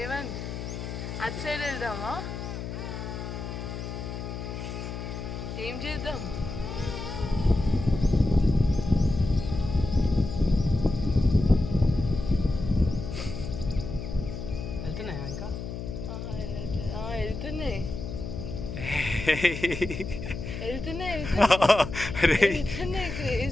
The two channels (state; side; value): noise; left; hum, 7 dB below the sound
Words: అటు సైడ్ వెళ్దామా? ఏం చేద్దాం? వెళ్తున్నాయా ఇంకా? వెళ్తున్నాయి.